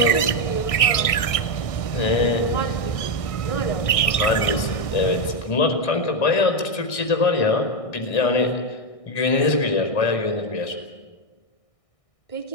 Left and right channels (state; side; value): late; right; 1.6 ms